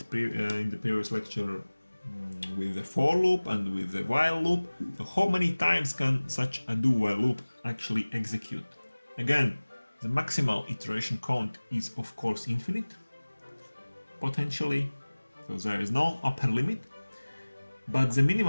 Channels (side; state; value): both; inverted; correlation -1.00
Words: in the previous lecture with the for loop and with the while loop. So how many times can such a do while loop actually execute? Again, the maximal iteration count is of course infinite, potentially, so there is no upper limit. But the